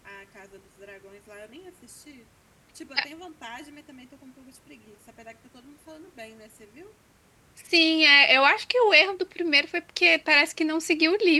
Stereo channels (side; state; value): both; identical; correlation 1.00